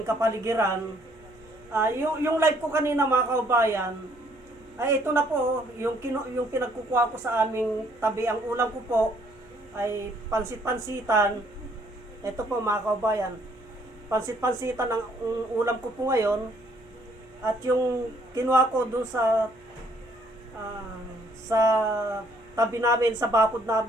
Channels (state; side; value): noise; left; hum, 27 dB below the sound